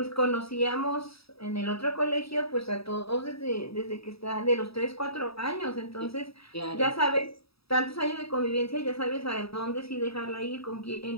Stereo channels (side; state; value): right; late; 0.77 ms